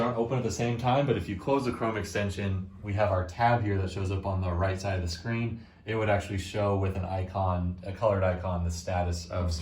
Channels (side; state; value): both; identical; correlation 1.00